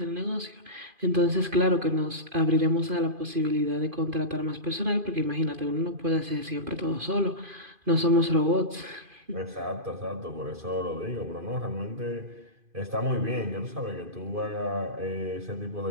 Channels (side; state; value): left; late; 2.5 ms